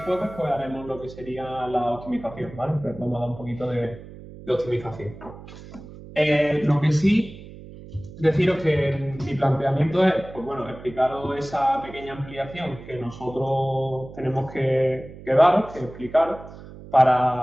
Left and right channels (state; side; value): noise; right; hum, 16 dB below the sound